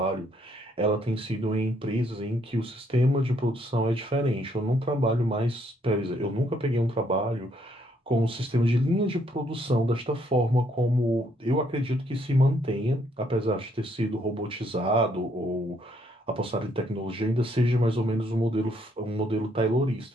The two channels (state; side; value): normal; both; correlation 0.70